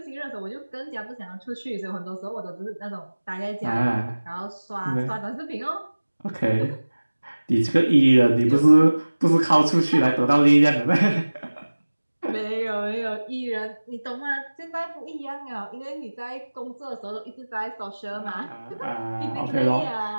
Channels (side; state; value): both; inverted; correlation -1.00